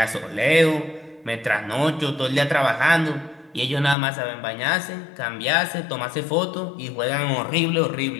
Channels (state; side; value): drops out; right; at 4.0 s